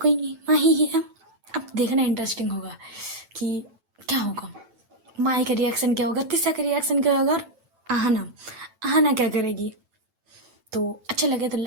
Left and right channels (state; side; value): late; left; 9.0 ms